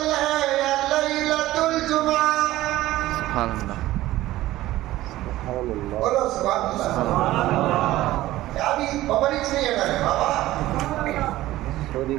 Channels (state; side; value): quieter; left; 16.0 dB